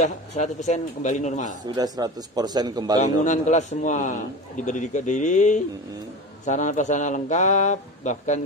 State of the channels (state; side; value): normal; both; correlation 0.29